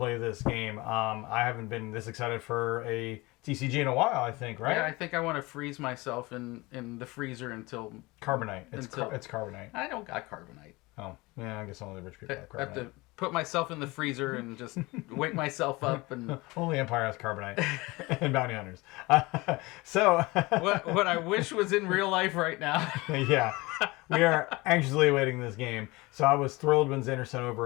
this game. I haven't been this excited for a TCG in a while, I think, right? Yeah, I think I want to freeze myself in the freezer until... Carbonite. It's carbonite. I don't got carbonite. Oh, yeah, I guess only the rich people have I have carbonite. to put myself in the freezer and just wake myself up and... Only Empire has carbonite and bounty hunters. So... what I wish was in real life right now. Yeah, we are anxiously awaiting this game. So I was thrilled when Xander sent over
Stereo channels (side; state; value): right; quieter; 22.8 dB